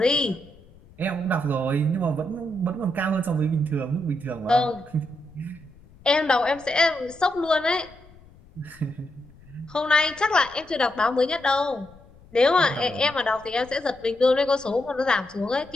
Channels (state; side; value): noise; left; rumble, 25 dB below the sound